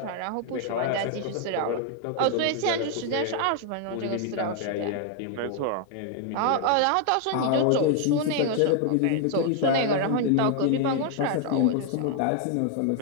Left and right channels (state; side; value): different; both; correlation 0.00